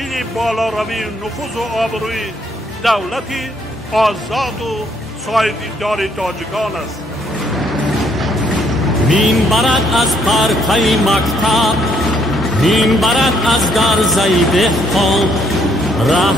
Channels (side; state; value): both; normal; correlation 0.69